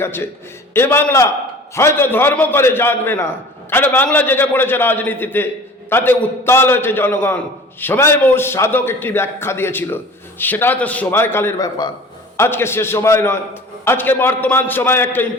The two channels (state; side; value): normal; both; correlation 0.43